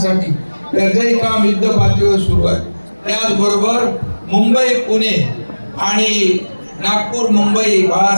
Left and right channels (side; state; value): both; inverted; correlation -1.00